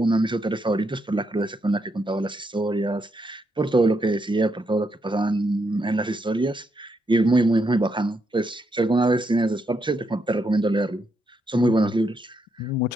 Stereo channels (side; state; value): both; normal; correlation 0.79